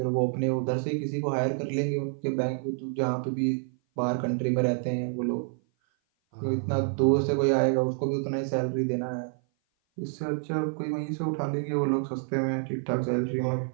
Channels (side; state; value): left; silent; 56 dB below the other